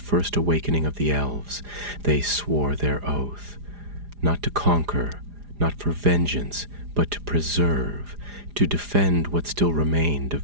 awakening of the elves, they swore their oath, not to conquer, not for vengeance, but to preserve, to defend what still remained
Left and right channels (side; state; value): left; late; 4.9 ms